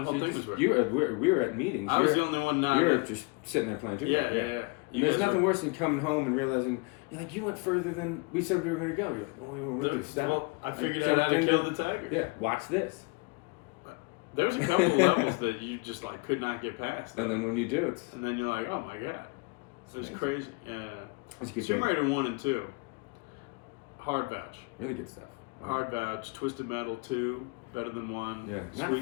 whole thing was weird. We were at meetings. I was the only one now. You were that- just sitting there playing too. Yeah. And there's nothing worse than coming home and realizing you went further than we said we were going to go. You're like, oh, we were really Well, I figured out how to kill the tiger. Yeah, watch this. There was a couple of levels that you just could not get past. And then when you do, and then you're like, oh my god, it was crazy. Yeah. That's a good Tomb game. Raider 1 and 2. Hard vouch. Really good stuff. Hard vouch. Twisted Metal 2, better than 1. Yeah. Not a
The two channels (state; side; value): quieter; right; 27.7 dB